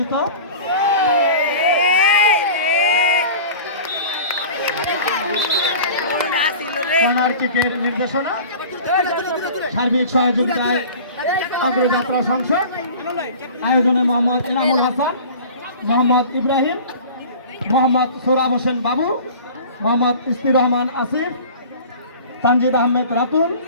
নির্দেশনা, সার্বিক সহযোগিতায় অগ্রযাত্রা সংসদ, আয়োজনে মোহাম্মদ এনামুল হাসান, মোহাম্মদ ইব্রাহিম, মোহাম্মদ সোহরাব হোসেন বাবু, মোহাম্মদ ইস্তির রহমান আসিফ, তানজিদ আহমেদ রাতুল,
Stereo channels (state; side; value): inverted; both; correlation -0.40